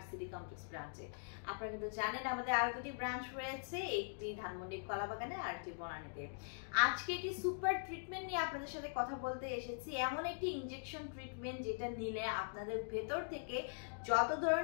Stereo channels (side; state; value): right; silent; digital silence